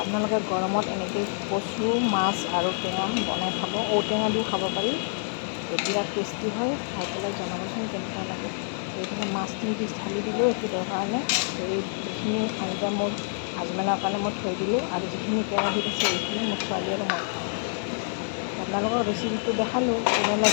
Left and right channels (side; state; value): right; silent; digital silence